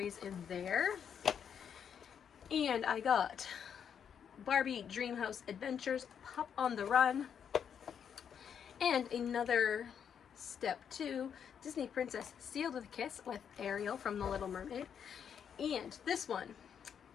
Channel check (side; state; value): right; quieter; 7.9 dB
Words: in there. And I got Barbie Dreamhouse Adventures, Pop on the Run, and another Step 2, Disney Princess Sealed with a Kiss with Ariel from The Little Mermaid. And this one,